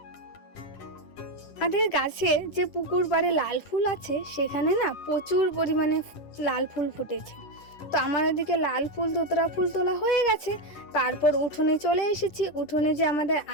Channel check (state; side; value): late; right; 10 ms